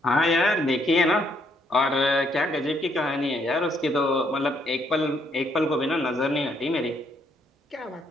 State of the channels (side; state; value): both; normal; correlation 0.71